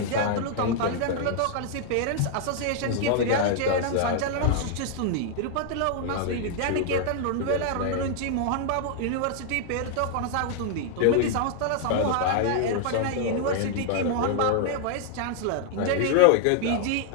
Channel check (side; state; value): both; different; correlation 0.00